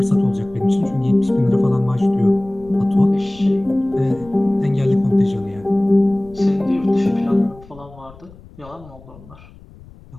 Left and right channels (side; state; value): left; noise; rumble, 22 dB below the sound